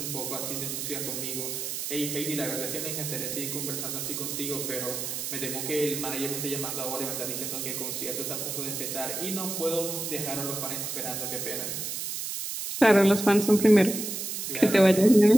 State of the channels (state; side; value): noise; right; hiss, 4 dB below the sound